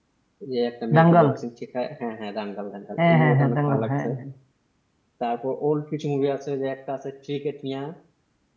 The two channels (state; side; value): identical; both; correlation 1.00